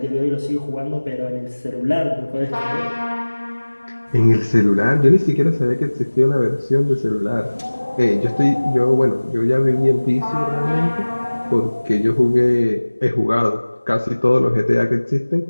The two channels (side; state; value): both; inverted; correlation -1.00